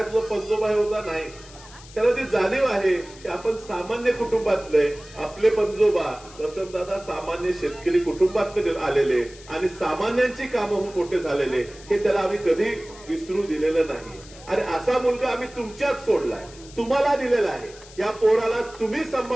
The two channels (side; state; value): left; noise; hiss, 20 dB below the sound